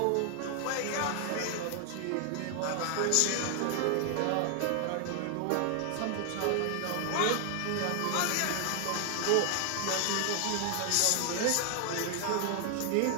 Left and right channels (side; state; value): both; different; correlation 0.00